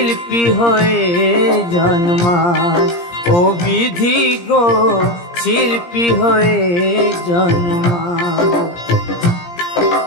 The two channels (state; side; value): late; right; 17 ms